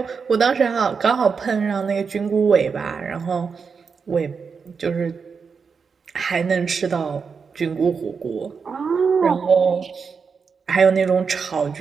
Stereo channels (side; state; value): left; quieter; 5.6 dB